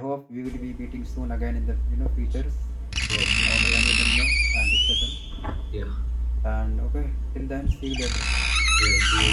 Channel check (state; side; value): identical; both; correlation 1.00